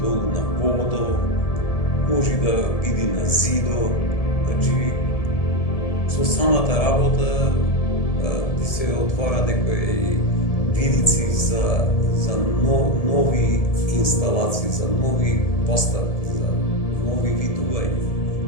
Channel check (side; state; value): right; late; 1.7 ms